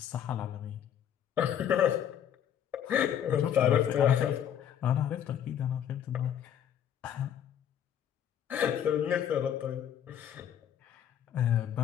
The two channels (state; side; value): quieter; right; 9.6 dB